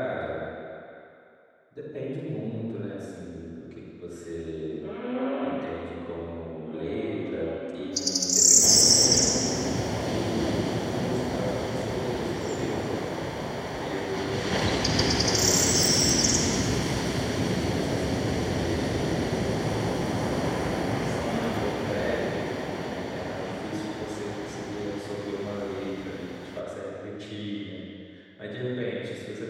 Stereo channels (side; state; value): both; identical; correlation 1.00